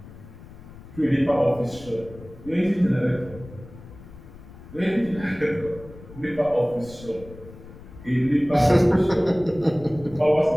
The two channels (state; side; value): noise; left; rumble, 18 dB below the sound